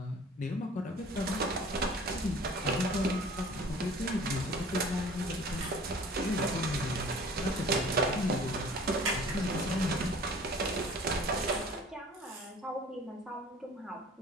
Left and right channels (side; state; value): both; normal; correlation 0.47